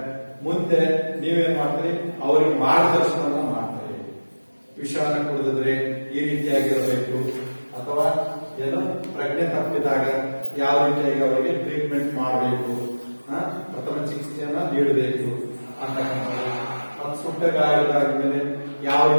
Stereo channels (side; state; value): both; inverted; correlation -1.00